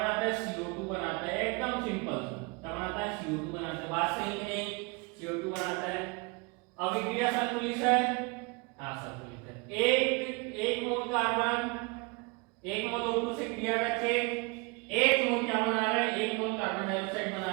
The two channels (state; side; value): quieter; left; 29.0 dB